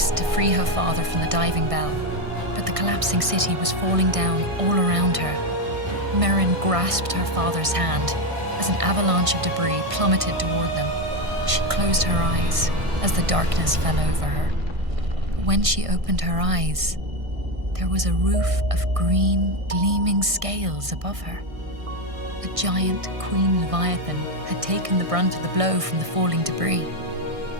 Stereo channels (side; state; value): left; late; 1.6 ms